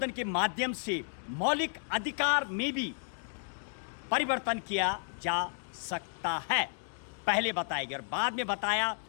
के माध्यम से मौलिक अधिकार में भी परिवर्तन किया जा सकता है। पहले बताया गया और बाद में बताया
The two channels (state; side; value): silent; right; digital silence